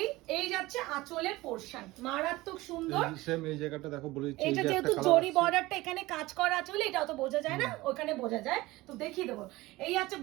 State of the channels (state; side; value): quieter; left; 19.5 dB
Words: এই যাচ্ছে আঁচলের পোরশন, মারাত্মক সুন্দর। সেম এই জায়গাটা দেখো বলে দিচ্ছি, এটা যেহেতু জরি বর্ডারটা এখানে কাজ করা আছে বলে এটা অত বোঝা যায় না, ওখানে বোঝা যায়, তো দেখিয়ে দেবো। এই আছে